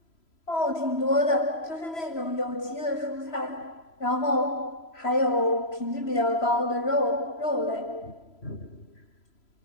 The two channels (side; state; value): right; late; 3.0 ms